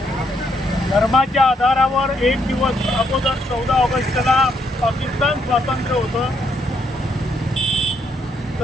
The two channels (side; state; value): both; normal; correlation 0.74